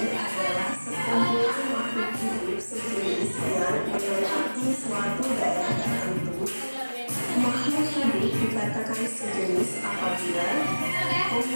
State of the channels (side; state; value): both; inverted; correlation -1.00